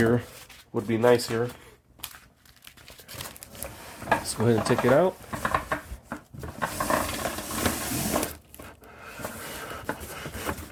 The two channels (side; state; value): both; identical; correlation 1.00